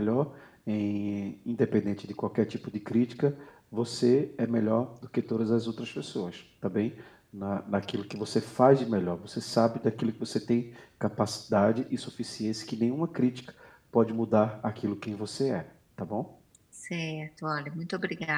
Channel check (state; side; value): identical; both; correlation 1.00